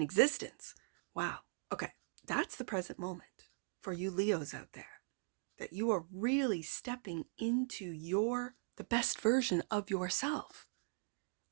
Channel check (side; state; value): left; silent; digital silence